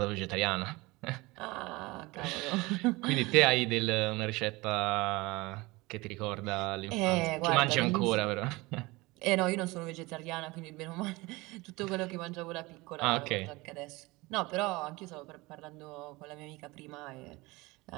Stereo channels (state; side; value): quieter; left; 22.6 dB